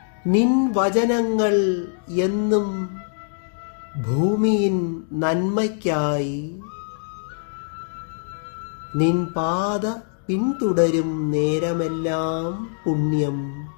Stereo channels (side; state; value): right; silent; digital silence